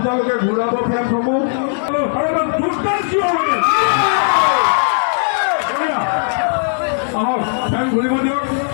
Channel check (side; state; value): right; silent; digital silence